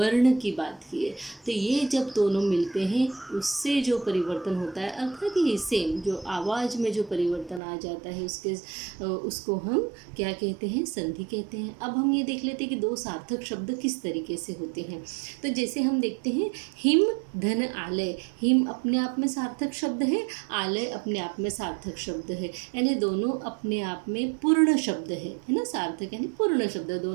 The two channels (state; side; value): drops out; left; at 7.6 s